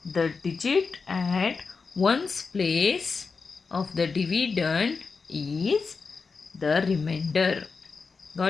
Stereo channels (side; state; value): right; quieter; 4.8 dB